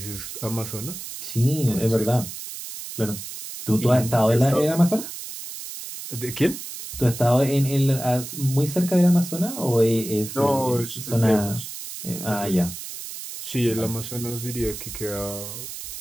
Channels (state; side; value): noise; right; hiss, 10 dB below the sound